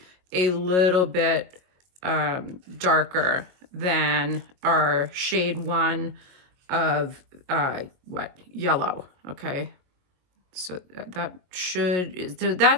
a little bit darker than our shade 1 of yellow. Okay, so that should, so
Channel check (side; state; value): left; late; 22 ms